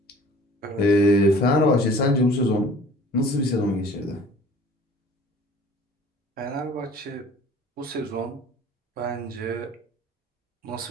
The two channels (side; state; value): both; normal; correlation 0.50